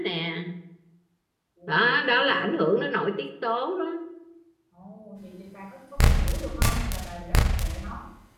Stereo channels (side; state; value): both; identical; correlation 1.00